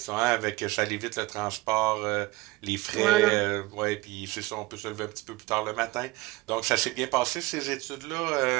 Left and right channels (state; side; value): quieter; left; 20.5 dB